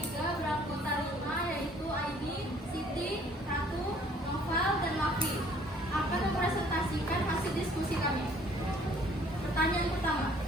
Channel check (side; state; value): both; normal; correlation 0.58